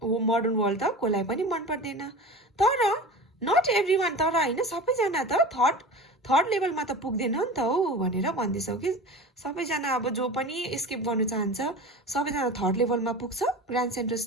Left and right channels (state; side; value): normal; both; correlation 0.33